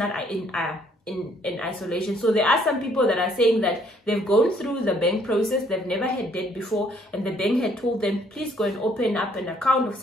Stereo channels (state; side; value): normal; both; correlation 0.65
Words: in isolation. So there are some people that are saying that they've gone through the bank process, they've never had debt before, and the bank had told them, please go and open up an account of